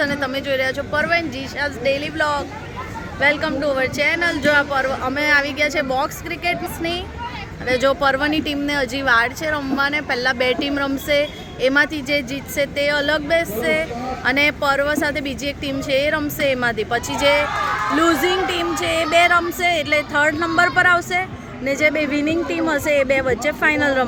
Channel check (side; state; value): both; identical; correlation 1.00